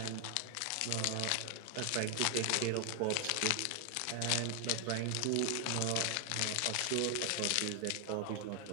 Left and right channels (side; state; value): both; different; correlation 0.00